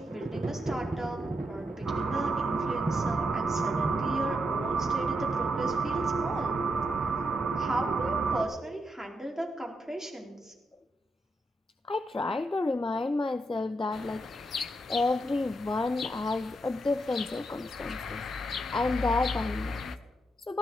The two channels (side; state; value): both; normal; correlation 0.82